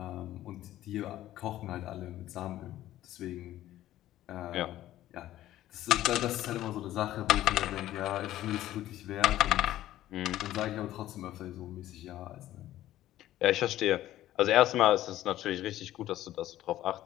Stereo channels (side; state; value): right; quieter; 13.9 dB